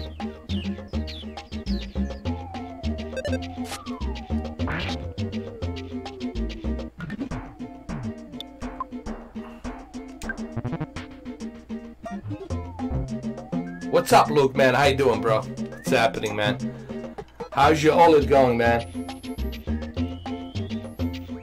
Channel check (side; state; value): both; identical; correlation 1.00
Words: What's up, Luke, man? How you doing, bro? What's happening, man? How's your OLED going, man?